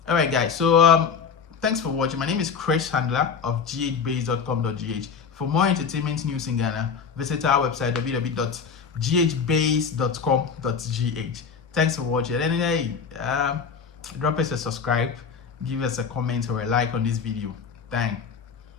All right, guys. So thanks for watching. My name is Chris Handler of ghbase.com.gh. For more entertainment news in Ghana, visit our website www.ghbase.com.gh. Thanks for watching. And hey, drop us a subscribe, give us a comment or a like on this video. Thanks.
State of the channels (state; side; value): quieter; right; 6.2 dB